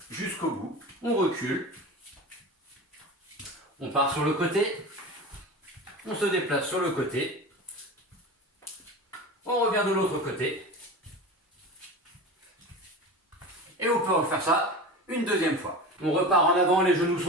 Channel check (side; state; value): both; normal; correlation 0.30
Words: jusqu'au bout. On recule, on part sur le côté, on se déplace sur le côté, on revient de l'autre côté et on peut refaire ça une deuxième fois. On repart en avant, les genoux